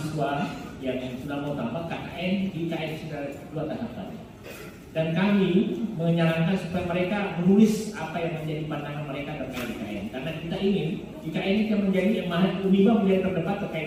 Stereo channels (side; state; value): both; identical; correlation 1.00